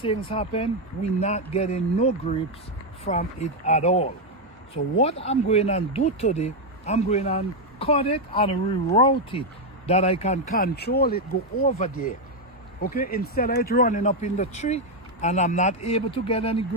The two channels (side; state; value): both; normal; correlation 0.02